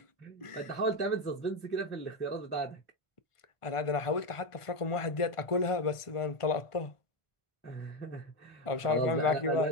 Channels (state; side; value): late; right; 1.5 ms